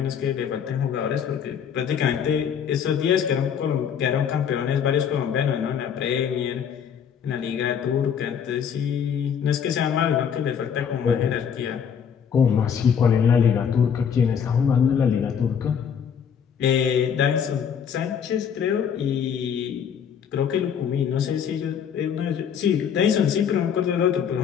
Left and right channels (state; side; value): quieter; right; 7.7 dB